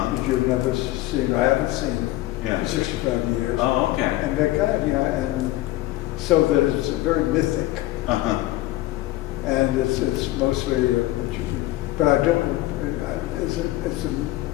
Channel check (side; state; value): right; quieter; 16.8 dB